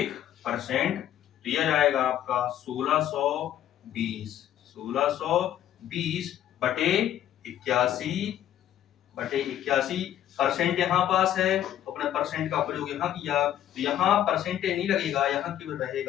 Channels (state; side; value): quieter; right; 11.5 dB